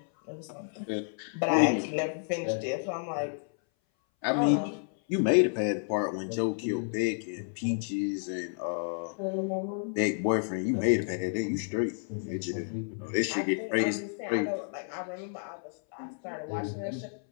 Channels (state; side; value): silent; right; 57 dB below the other